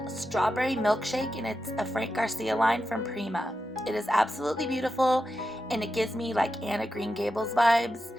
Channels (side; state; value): both; normal; correlation 0.89